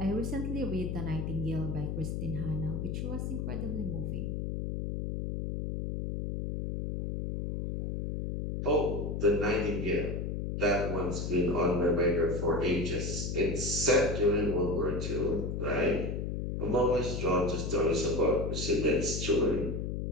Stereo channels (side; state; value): left; noise; hum, 3 dB below the sound